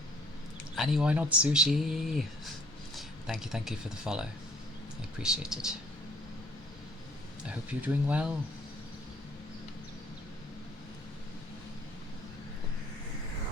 Annie, why not sushi? Thank you for the follow. I appreciate it. I hope you're doing well.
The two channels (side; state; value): both; normal; correlation 0.58